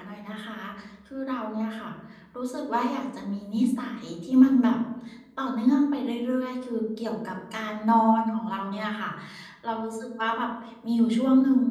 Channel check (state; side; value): identical; both; correlation 1.00